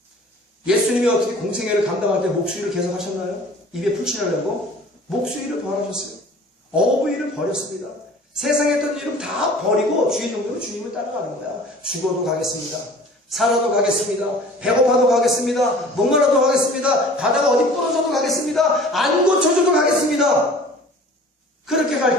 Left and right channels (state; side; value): normal; both; correlation 0.46